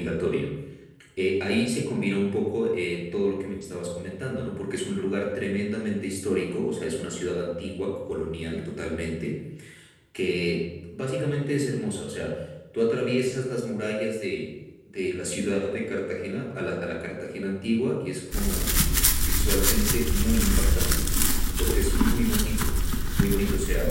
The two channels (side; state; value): both; identical; correlation 1.00